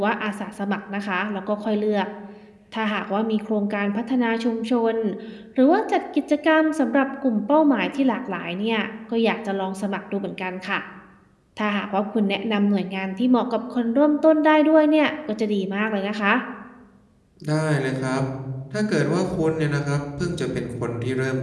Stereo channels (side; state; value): both; identical; correlation 1.00